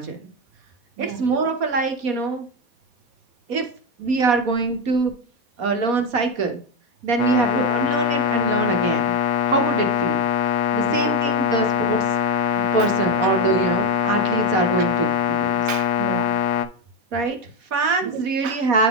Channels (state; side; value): late; left; 4.2 ms